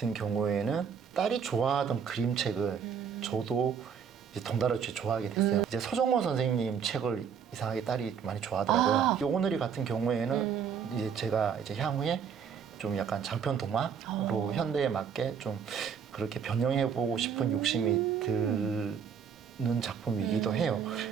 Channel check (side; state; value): left; quieter; 7.2 dB